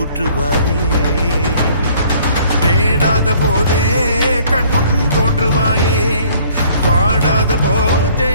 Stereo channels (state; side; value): inverted; both; correlation -0.58